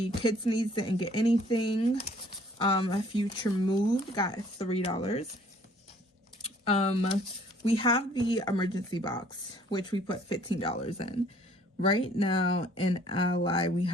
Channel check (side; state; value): both; normal; correlation 0.58